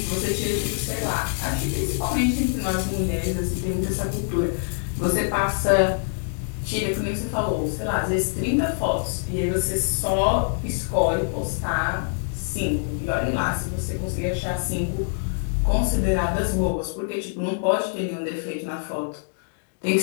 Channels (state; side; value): silent; right; digital silence